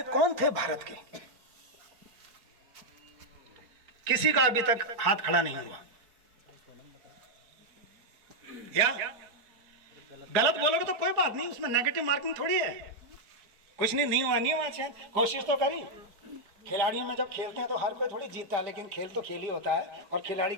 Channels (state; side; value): late; left; 4.6 ms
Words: कौन थे भारत के? किसी का अभी तक हाथ खड़ा नहीं हुआ। या गलत बोलोगे तो कोई बात नहीं, उसमें नेगेटिव मार्किंग थोड़ी है। कुछ नहीं हुआ, नहीं हुआ, अच्छा कोशिश तो करी। खिलाड़ियों में जब खेलते हैं तो हर कोई थोड़ी जीतता है, लेकिन खेल तो खेल ही होता है और खिलाड़ी